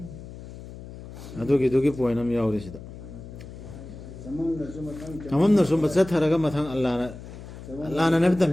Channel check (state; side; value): noise; left; hum, 14 dB below the sound